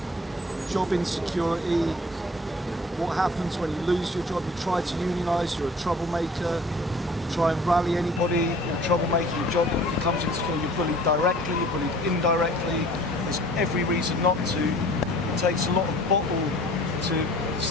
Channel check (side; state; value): both; normal; correlation 0.49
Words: job insecurity, what happens when you lose your job? You try to unionise, you're a troublemaker. Try and rally anybody, you're a troublemaker, your job becomes insecure, you're bullied directly, you're bullied indirectly. There's every reason not to. It takes a lot of bottle to